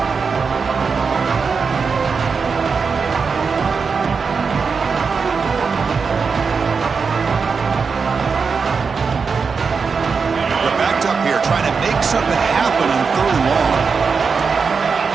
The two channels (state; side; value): quieter; left; 5.3 dB